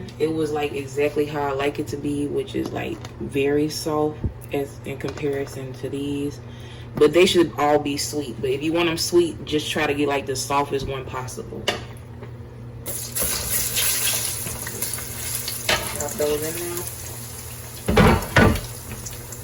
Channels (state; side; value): identical; both; correlation 1.00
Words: it was like exactly how I like it to be, which is like very soft as in comparison to these. But they should all be sweet. But if you want them sweet, just try to get like the softest one possible. Drop those in now.